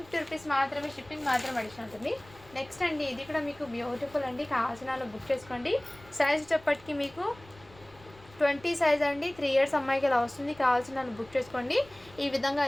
రూపీస్ మాత్రమే, షిప్పింగ్ మాత్రం అడిషన్ ఉంటుంది. నెక్స్ట్ అండి ఇది కూడా మీకు బ్యూటిఫుల్ అండి. కావాల్సిన బుక్ చేసుకోండి. సైజ్ చెప్పటికి మీకు 20 సైజ్ అండి. 3 ఇయర్స్ అమ్మాయికి ఇలా వస్తుంది. కావాల్సిన బుక్ చేసుకోండి. ఈ విధంగా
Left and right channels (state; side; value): noise; left; rumble, 24 dB below the sound